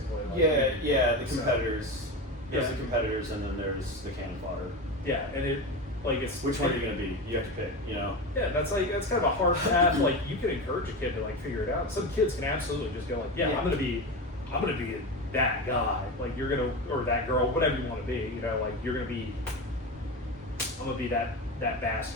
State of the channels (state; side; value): normal; both; correlation 0.22